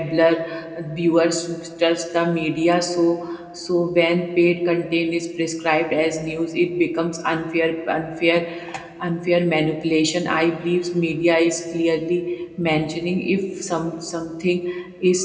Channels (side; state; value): both; identical; correlation 1.00